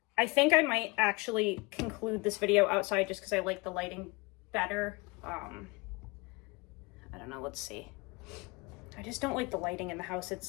I think I might actually conclude this video outside just because I like the lighting better. I don't know, let's see. I just don't like the lighting in the house.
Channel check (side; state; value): right; quieter; 26.0 dB